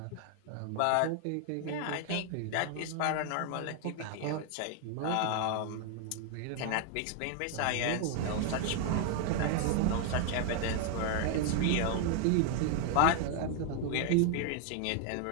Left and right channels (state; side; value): different; both; correlation 0.00